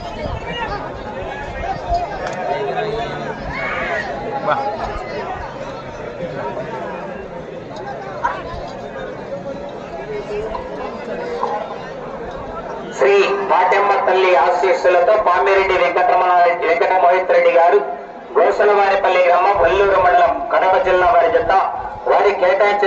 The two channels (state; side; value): identical; both; correlation 1.00